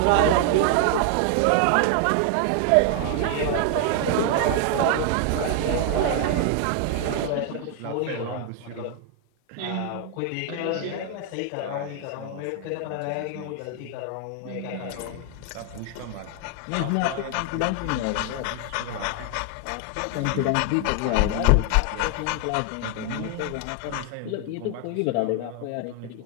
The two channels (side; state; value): both; different; correlation 0.00